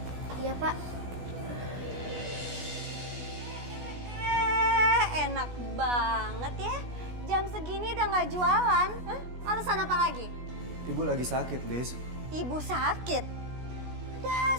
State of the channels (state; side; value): late; left; 16 ms